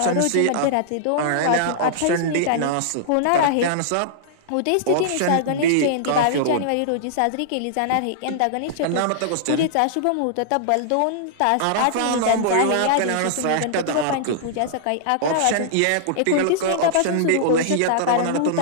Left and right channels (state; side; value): different; both; correlation -0.01